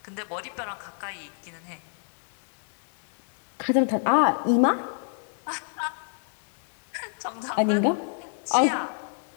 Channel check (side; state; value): right; silent; digital silence